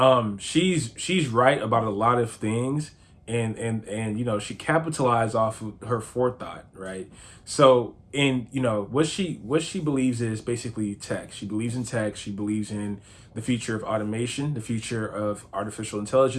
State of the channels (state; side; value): identical; both; correlation 1.00